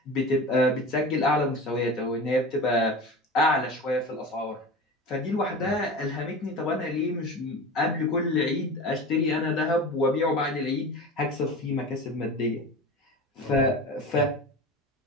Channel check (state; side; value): normal; both; correlation 0.31